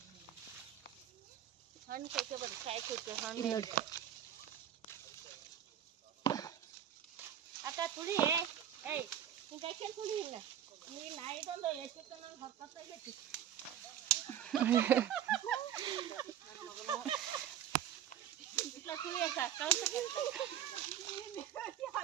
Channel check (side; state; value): left; quieter; 10.4 dB